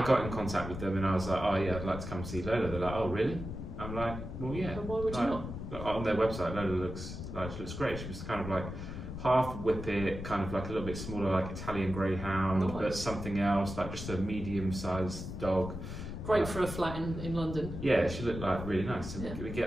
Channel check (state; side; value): noise; left; rumble, 7 dB below the sound